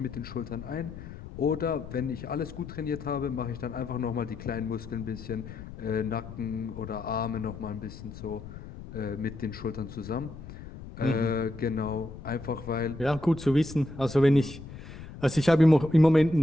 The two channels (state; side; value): noise; left; rumble, 13 dB below the sound